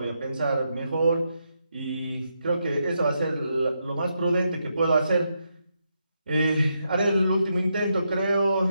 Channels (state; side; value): inverted; both; correlation -0.82